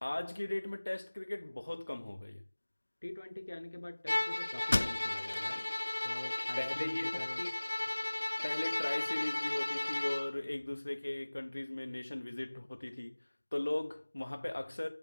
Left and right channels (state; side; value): inverted; both; correlation -1.00